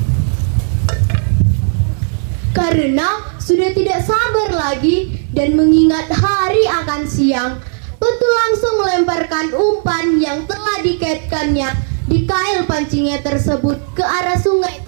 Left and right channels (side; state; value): left; silent; digital silence